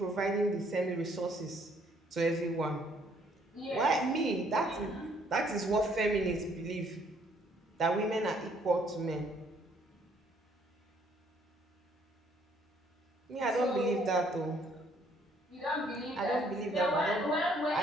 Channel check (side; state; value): both; normal; correlation 0.65